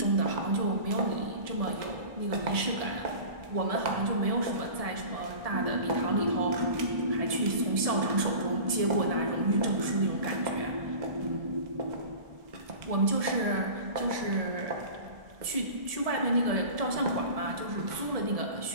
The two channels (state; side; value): late; left; 1.7 ms